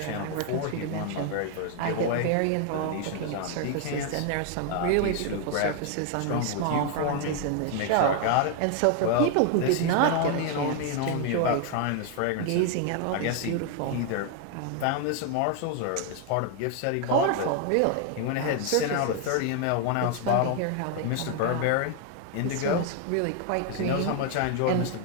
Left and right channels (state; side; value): different; both; correlation 0.00